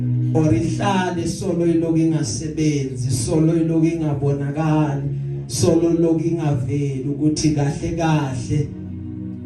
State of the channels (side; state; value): both; identical; correlation 1.00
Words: or ihlale solo iloku ingasebenzi, solo iloku ingabonakali, solo iloku ingaveli ukuthi kahle kahle